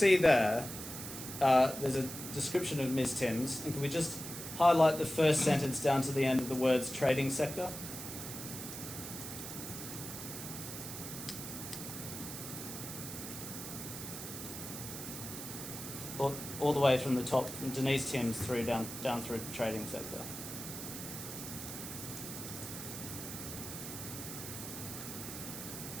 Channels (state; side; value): noise; right; hiss, 8 dB below the sound